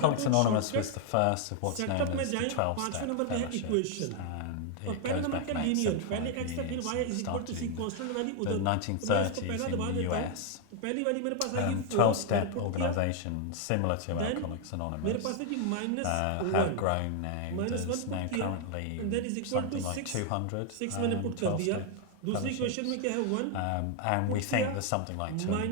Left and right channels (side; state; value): both; different; correlation 0.00